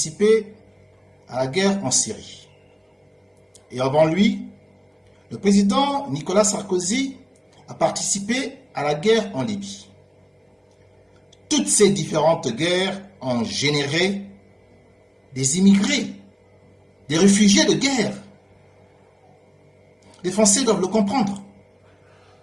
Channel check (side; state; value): both; identical; correlation 1.00